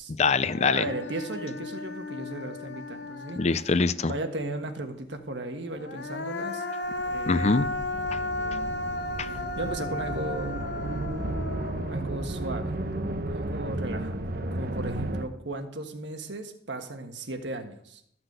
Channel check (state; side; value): normal; both; correlation 0.25